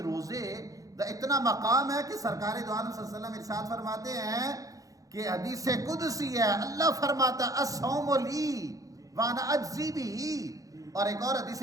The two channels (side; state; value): left; late; 0.17 ms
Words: روزے دا اتنا مقام ہے کہ سرکار دو عالم صلی اللہ علیہ وسلم ارشاد فرماتے ہیں کہ حدیث قدسی ہے، اللہ فرماتا ہے الصوم لی وانا اجزی بھی، اور ایک اور حدیث